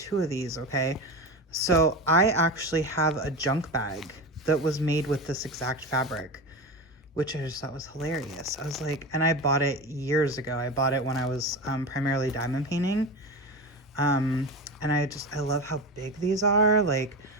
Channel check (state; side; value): normal; both; correlation 0.23